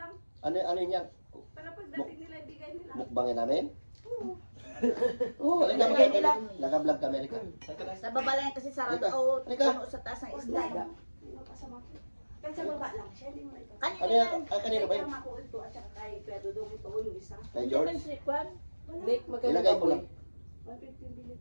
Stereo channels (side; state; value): both; inverted; correlation -1.00